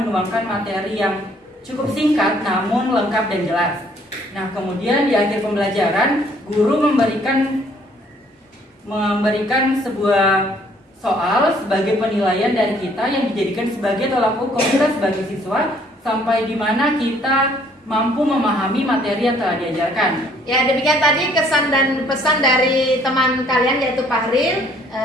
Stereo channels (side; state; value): both; normal; correlation 0.62